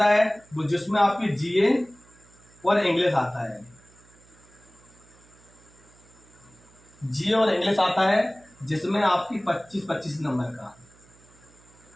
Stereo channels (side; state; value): right; noise; hum, 27 dB below the sound